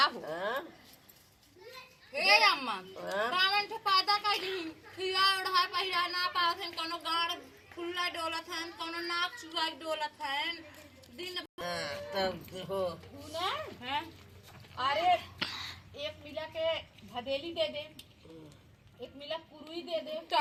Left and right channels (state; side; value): identical; both; correlation 1.00